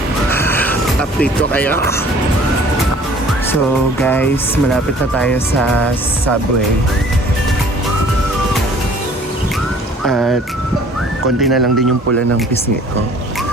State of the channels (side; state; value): both; normal; correlation 0.52